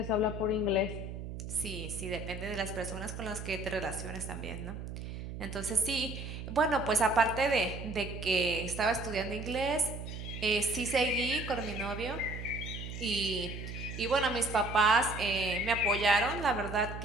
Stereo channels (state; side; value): noise; right; hum, 8 dB below the sound